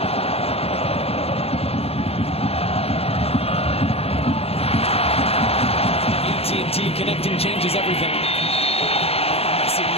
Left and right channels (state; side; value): late; right; 0.29 ms